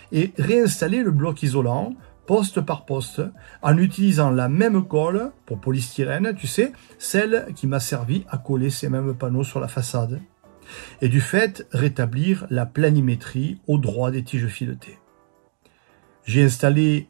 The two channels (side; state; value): left; silent; digital silence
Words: et réinstallé le bloc isolant, poste par poste, en utilisant la même colle pour polystyrène, tu sais, celle qui m'a servi à coller ces mêmes panneaux sur la façade. Et du fait, rétablir la planimétrie au droit des tiges filetées. J'ai installé